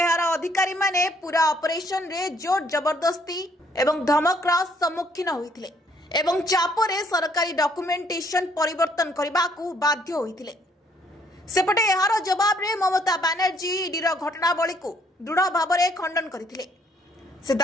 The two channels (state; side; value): normal; both; correlation 0.65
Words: अधिकारी माने पूरा ऑपरेशन रे जोर जबरदस्ती एवं धमकर सम्मुखीन होइथिले एवं चापरे सरकारी डॉक्यूमेंटेशन परिवर्तन करबाकू बाध्य होइथिले। सेपटे एहार जवाब रे ममता बनर्जी ईडीर घटनावली को दृढ़ भाव में खंडन करथिले। से